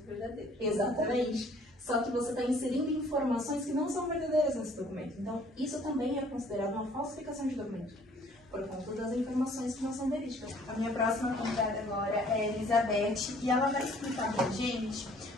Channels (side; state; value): both; normal; correlation 0.58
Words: verdadeiro. Exatamente. Só que você está inserindo informações que não são verdadeiras nesse documento. Então, isso também é considerado uma falsificação de documento, por conta das informações que não são verídicas. A minha próxima convidada agora é a Elizabeth e ela vai explicar pra gente